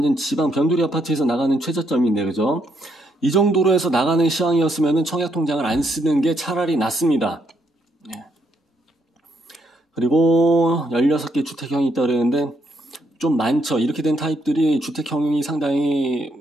지방 변두리 아파트에서 나가는 최저점인데, 그죠? 이 정도로 해서 나가는 시황이었으면 청약 통장을 안 쓰는 게 차라리 낫습니다. 예. 그리고 16개 주택형이 있다 그랬는데 좀 많죠. 이렇게 된 타입들이 주택형이 상당히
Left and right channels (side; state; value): both; normal; correlation 0.74